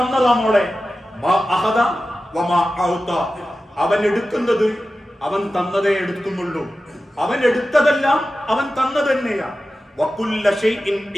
മോളെ. മാ അഖദ വമാ അഅത. അവൻ എടുക്കുന്നത് അവൻ തന്നതേ എടുക്കുന്നുള്ളൂ, അവൻ എടുത്തതെല്ലാം അവൻ തന്നത് തന്നെയാ. വകുല്ല ശൈഇൻ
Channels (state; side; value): normal; both; correlation 0.94